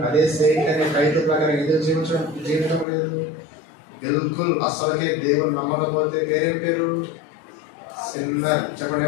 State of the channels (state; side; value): drops out; right; at 2.9 s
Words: అదే సెయింట్ అనే టైటిల్ ప్రకారం ఎందుకు జీవించడం లేదు? బిల్కుల్ అసలుకే దేవుని నమ్మకపోతే పేరేం పేరు? సిన్నర్. చెప్పండి,